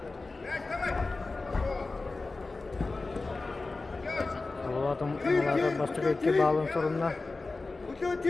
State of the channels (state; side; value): quieter; right; 3.6 dB